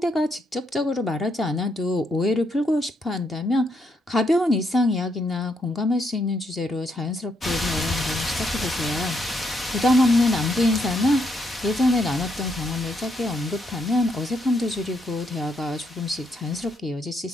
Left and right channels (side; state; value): both; normal; correlation 0.76